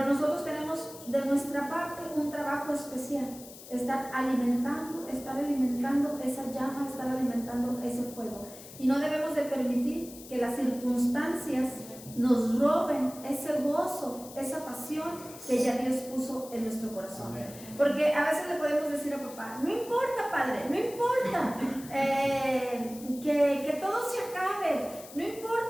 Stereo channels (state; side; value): noise; left; hiss, 17 dB below the sound